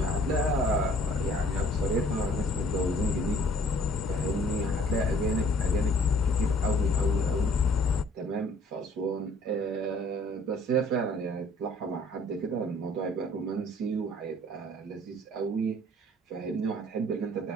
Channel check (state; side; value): normal; both; correlation 0.57